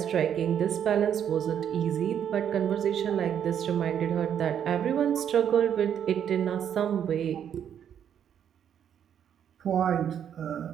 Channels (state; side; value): quieter; left; 9.0 dB